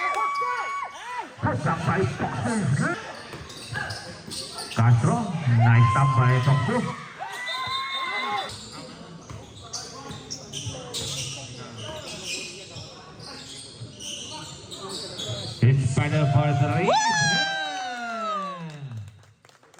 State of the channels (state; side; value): identical; both; correlation 1.00